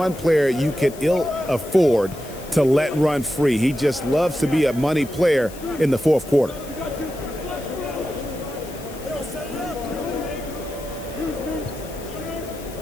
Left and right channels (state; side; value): noise; left; hiss, 18 dB below the sound